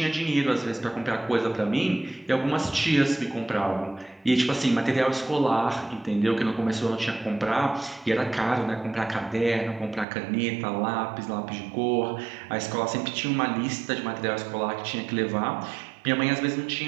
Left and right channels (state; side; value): drops out; left; at 10.1 s